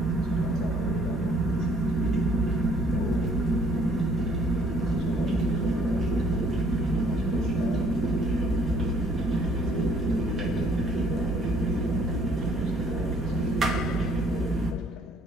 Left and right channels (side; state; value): both; normal; correlation 0.62